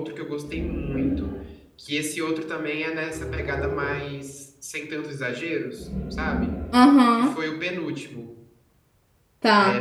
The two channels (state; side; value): identical; both; correlation 1.00